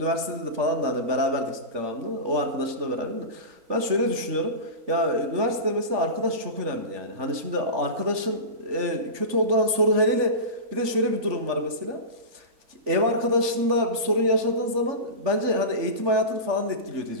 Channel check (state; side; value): late; left; 3.5 ms